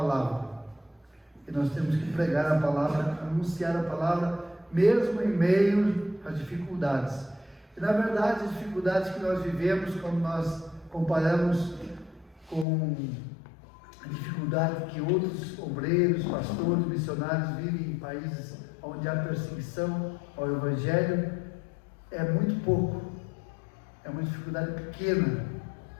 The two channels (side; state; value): right; drops out; at 12.7 s